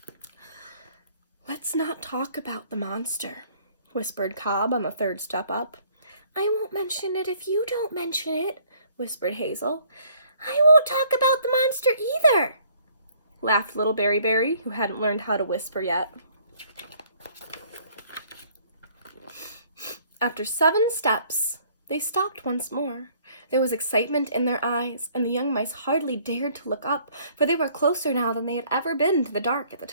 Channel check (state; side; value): inverted; both; correlation -0.60